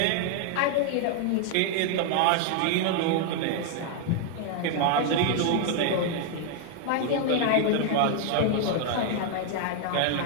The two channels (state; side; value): different; both; correlation 0.00